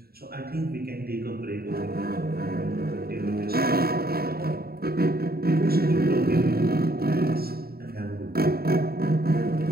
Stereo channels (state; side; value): late; left; 0.45 ms